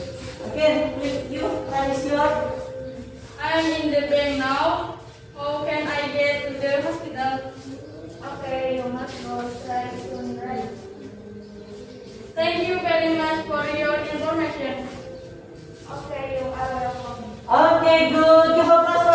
Oke, you raise your. I'm in the bank now. How can I get to the hospital? Okay, you must go straight to the right. Thank you very much for your information. Okay, you are welcome. Okay, good. Give applause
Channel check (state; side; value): identical; both; correlation 1.00